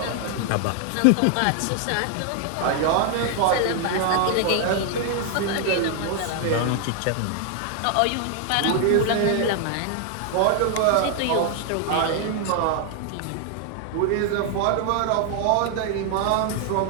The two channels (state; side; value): different; both; correlation 0.00